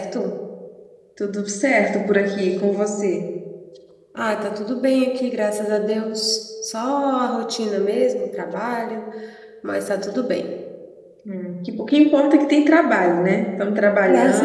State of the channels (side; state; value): both; identical; correlation 1.00